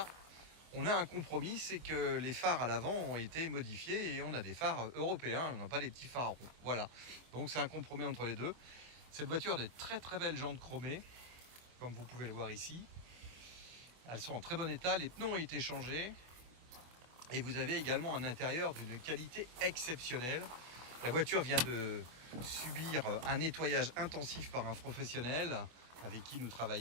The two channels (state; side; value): late; left; 24 ms